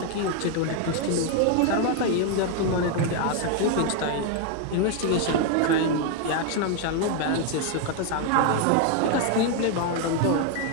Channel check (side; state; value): both; different; correlation 0.01